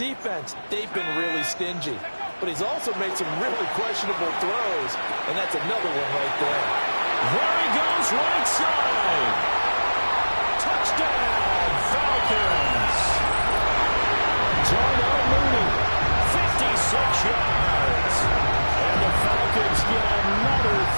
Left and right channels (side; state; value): both; inverted; correlation -1.00